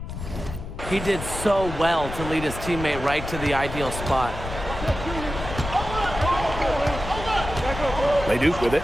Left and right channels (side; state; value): left; noise; rumble, 8 dB below the sound